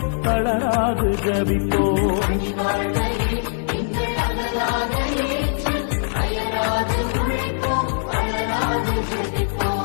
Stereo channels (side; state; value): right; silent; digital silence